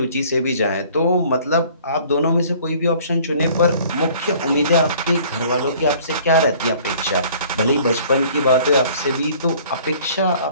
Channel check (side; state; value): both; inverted; correlation -0.53